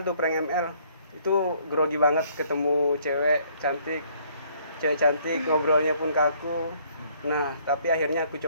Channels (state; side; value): inverted; both; correlation -0.63